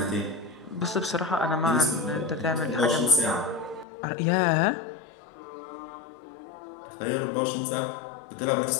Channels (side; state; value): right; drops out; at 3.9 s